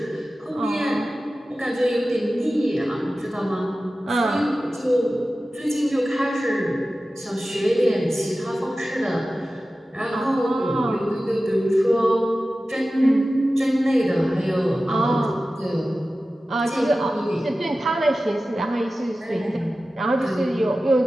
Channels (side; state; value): both; normal; correlation 0.95